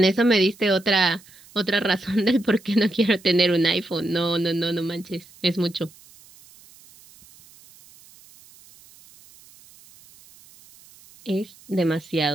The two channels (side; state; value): right; noise; hiss, 25 dB below the sound